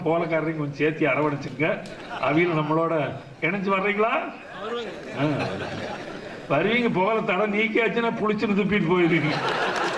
போலக்காரரையும் கொஞ்சம் சேர்த்து அரவணைச்சுங்க. அவையில் நம்மளோட இணைஞ்சு வர்றீங்களா? வருவீங்க. புகழ தடை நீக்கியாச்சுன்னா புளிச்சுன்னு துப்பிட்டு போயிருவீங்க.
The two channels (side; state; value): both; identical; correlation 1.00